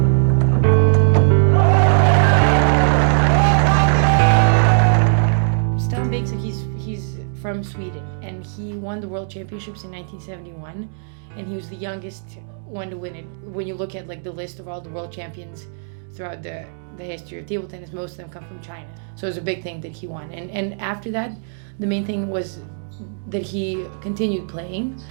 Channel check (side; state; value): left; silent; digital silence